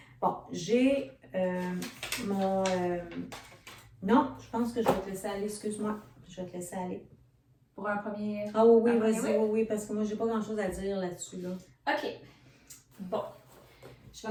Bon, j'ai mon... Non, je pense que je vais te laisser aller. Excuse-moi. Je vais te laisser aller. Pour un premier... Ah oui, un vas-y, premier, oui, parce que moi, j'ai pas grand-chose à dire là-dessus, là. OK. Bon. Je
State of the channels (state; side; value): identical; both; correlation 1.00